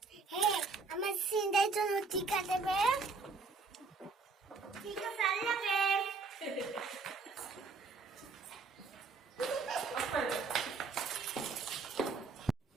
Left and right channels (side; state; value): left; quieter; 4.3 dB